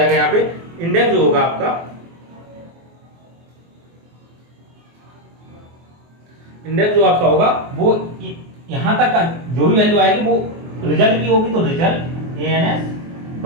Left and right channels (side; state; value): left; late; 24 ms